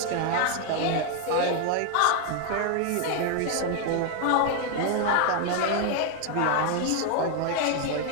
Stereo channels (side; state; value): both; different; correlation 0.00